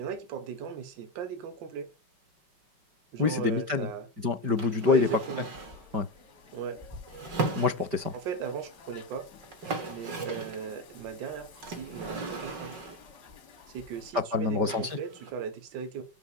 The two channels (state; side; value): late; left; 5.1 ms